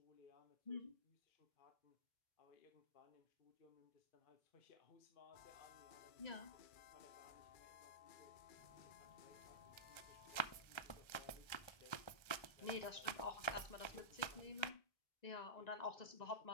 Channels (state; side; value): late; right; 1.3 ms